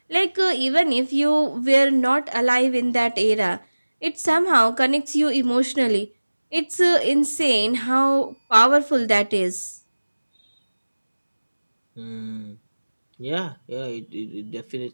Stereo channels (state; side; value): inverted; both; correlation -1.00